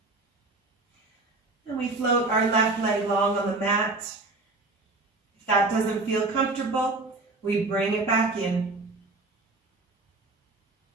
And we float our left leg long on the mat. If that doesn't feel comfortable, we bring it back in.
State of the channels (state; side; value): quieter; left; 3.3 dB